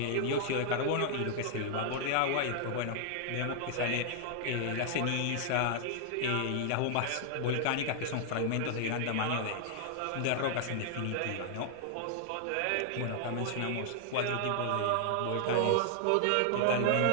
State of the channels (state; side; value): different; both; correlation 0.00